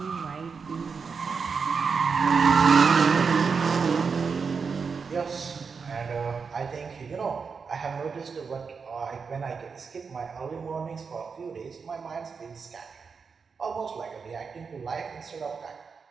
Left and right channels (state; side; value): quieter; left; 5.4 dB